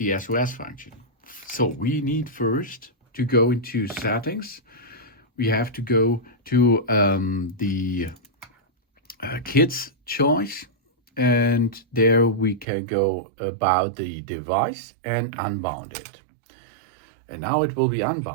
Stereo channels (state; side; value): drops out; left; at 12.7 s